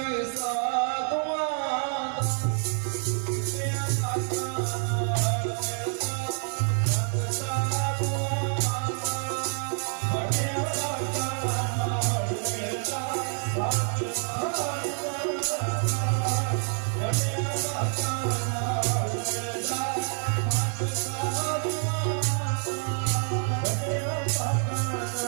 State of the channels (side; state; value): left; silent; 57 dB below the other